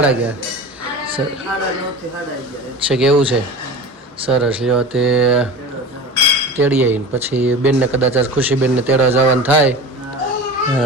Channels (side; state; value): both; normal; correlation 0.33